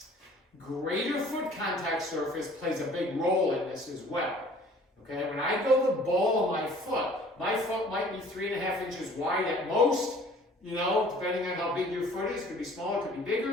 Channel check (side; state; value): both; normal; correlation 0.52